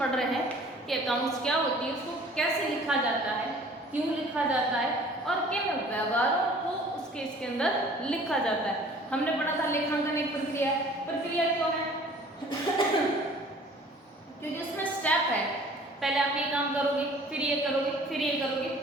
रहे हैं कि अकाउंट्स क्या होती है, उसको कैसे लिखा जाता है, क्यों लिखा जाता है और किन व्यवहारों को उसके इसके अंदर लिखा जाता है। हमने पढ़ा था लेखांकन एक प्रक्रिया। प्रक्रिया क्यों है? क्योंकि उसमें स्टेप है, पहले आप ये काम करोगे, फिर ये करोगे, फिर ये करोगे,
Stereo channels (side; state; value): both; normal; correlation 0.50